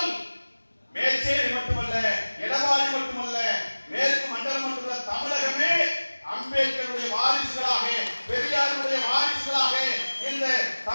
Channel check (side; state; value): both; inverted; correlation -1.00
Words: மேச்சேரி மட்டுமல்ல, எடப்பாடி மட்டுமல்ல, மேற்கு மண்டலம் மட்டுமல்ல, தமிழகமே அம்பேத்கருடைய வாரிசுகளாக, பெரியாருடைய வாரிசுகளாக இந்த